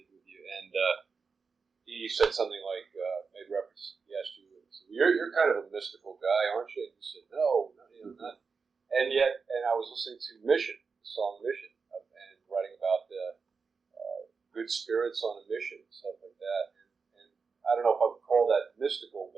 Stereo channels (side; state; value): left; quieter; 5.1 dB